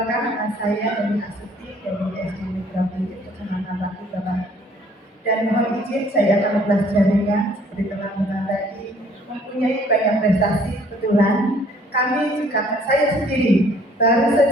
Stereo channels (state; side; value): normal; both; correlation 0.59